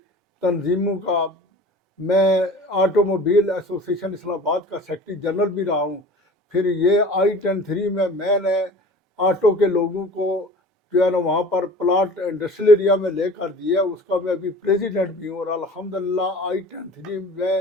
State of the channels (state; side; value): normal; both; correlation 0.42